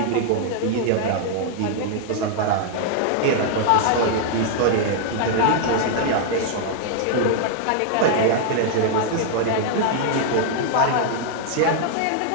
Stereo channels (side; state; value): both; different; correlation 0.00